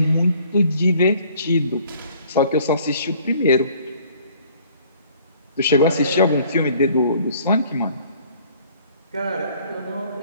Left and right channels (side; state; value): both; inverted; correlation -0.57